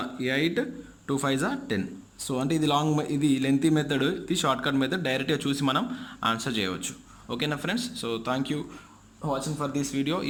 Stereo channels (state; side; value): identical; both; correlation 1.00